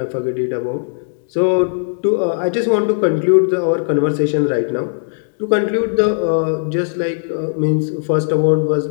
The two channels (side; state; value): right; silent; digital silence